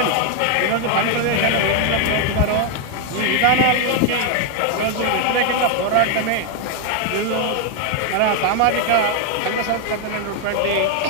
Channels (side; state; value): both; different; correlation 0.00